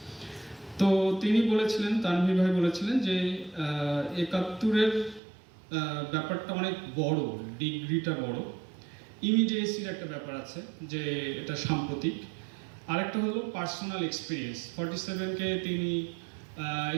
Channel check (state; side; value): drops out; left; at 5.2 s